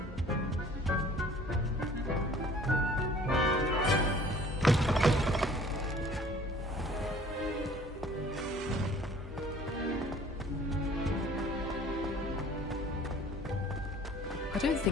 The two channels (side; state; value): both; normal; correlation 0.52